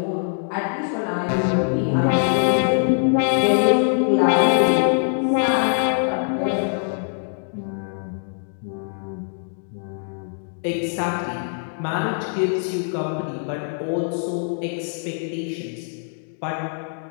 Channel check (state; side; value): silent; right; digital silence